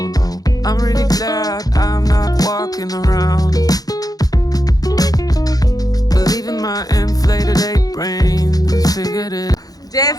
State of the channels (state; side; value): late; right; 0.18 ms